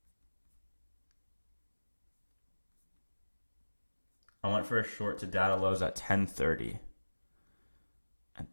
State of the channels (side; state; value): both; inverted; correlation -1.00